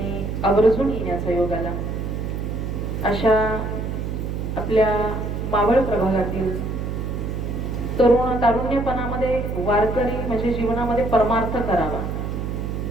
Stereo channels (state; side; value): noise; right; hum, 3 dB below the sound